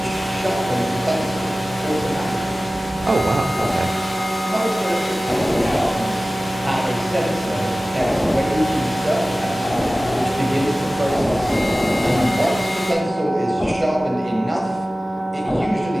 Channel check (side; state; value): both; normal; correlation 0.97